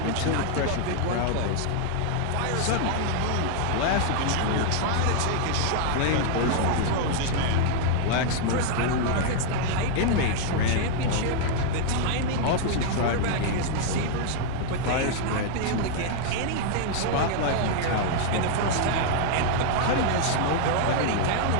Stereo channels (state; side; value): different; both; correlation 0.00